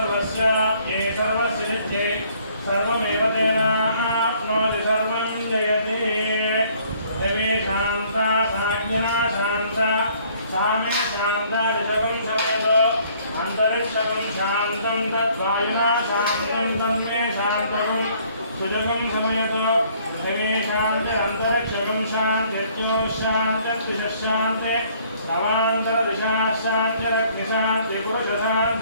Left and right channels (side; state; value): both; inverted; correlation -0.61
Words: ये सर्वस्य नित्ये सर्वमेव तेनाप्नोति सर्वं जयति देवी शान्ता साज्ञना शान्ता सामे शान्ता ऋषभं समयतो अन्तरिक्षकं शान्तं तद्वायुना शान्तं तन्मे शान्तकं सुजगं समयतो देवी शान्ति अन्तरिक्षकं शान्त्यत्योशान्त्यद्विषशान्ते अवान्तरदिशाशान्ति रग्निशान्ति